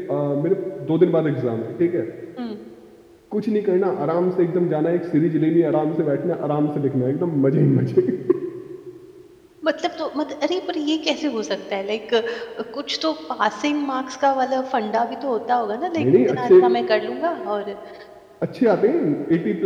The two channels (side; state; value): both; identical; correlation 1.00